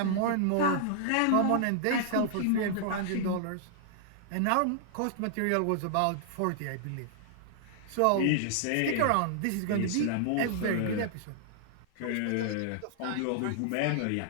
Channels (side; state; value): both; different; correlation -0.01